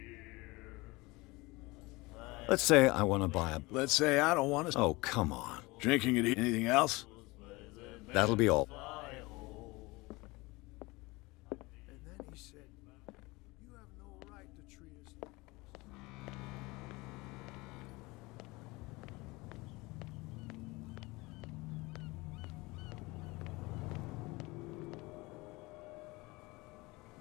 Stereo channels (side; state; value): right; quieter; 23.1 dB